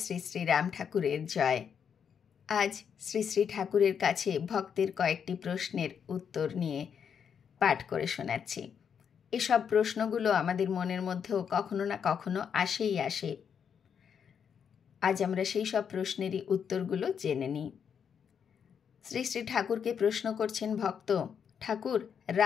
শ্রী শ্রী রাম ঠাকুরের জয়। আজ শ্রী শ্রী ঠাকুরের কাছে ভক্তের কয়েকটি প্রশ্নের উত্তর নিয়ে পাঠ করে শোনাচ্ছি। এসব প্রশ্নগুলো আমাদের মনের মধ্যেও কখনো না কখনো আসে। আজ আমরা সেই সব প্রশ্নেরই উত্তরগুলো জেনে নিই। শ্রী শ্রী ঠাকুরকে প্রশ্ন করছেন ভক্ত, ঠাকুর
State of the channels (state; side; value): quieter; right; 7.4 dB